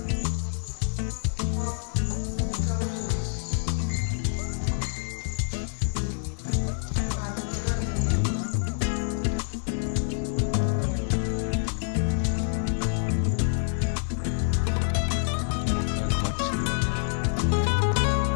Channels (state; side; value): silent; right; digital silence